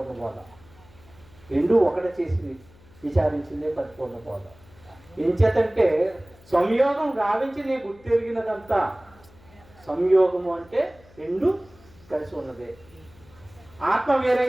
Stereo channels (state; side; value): noise; left; hum, 26 dB below the sound